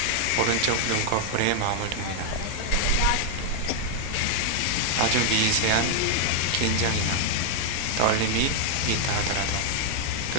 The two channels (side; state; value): both; different; correlation 0.00